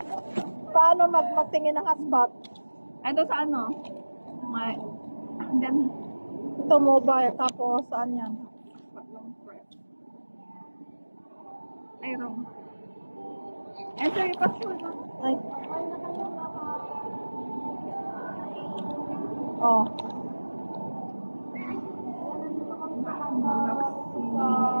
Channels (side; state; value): both; inverted; correlation -1.00